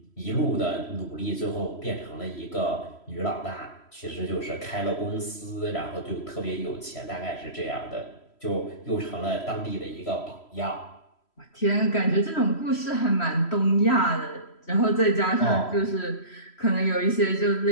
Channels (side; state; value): right; late; 3.1 ms